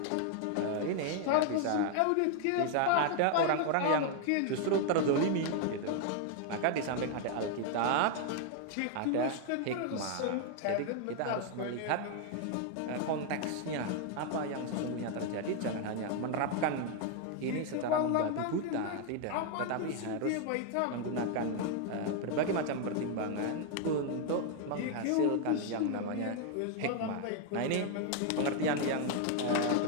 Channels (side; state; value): both; different; correlation 0.00